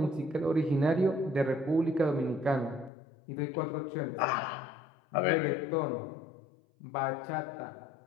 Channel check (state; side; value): drops out; right; at 2.9 s